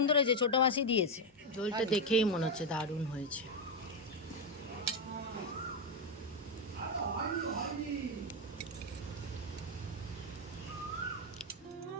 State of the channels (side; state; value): both; normal; correlation 0.07